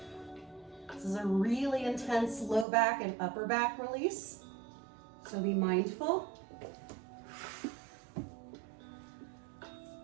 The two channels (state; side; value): drops out; left; at 2.7 s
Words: This is a really intense low back and upper back release, so be mindful.